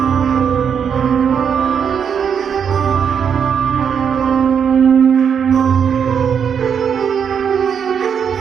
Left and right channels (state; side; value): quieter; left; 7.4 dB